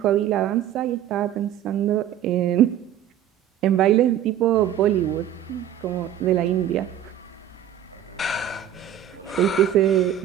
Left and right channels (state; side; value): quieter; left; 10.6 dB